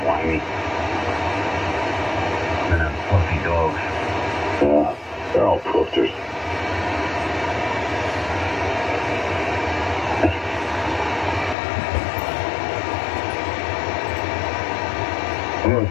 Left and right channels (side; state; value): right; drops out; at 11.6 s